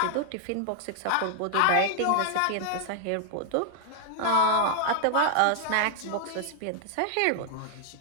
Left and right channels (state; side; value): different; both; correlation 0.00